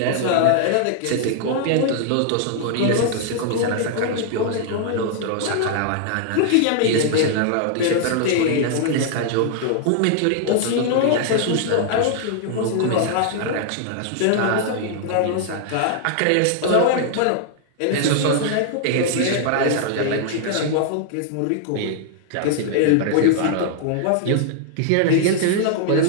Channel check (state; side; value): different; both; correlation -0.01